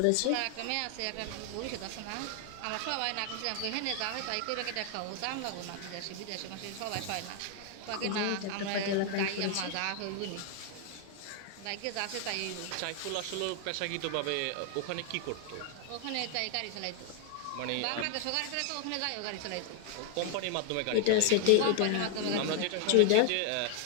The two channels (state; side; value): different; both; correlation 0.00